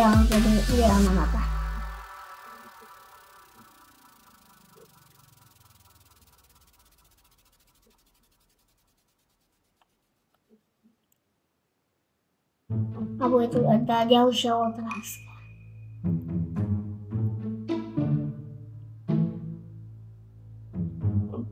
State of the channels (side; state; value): both; identical; correlation 1.00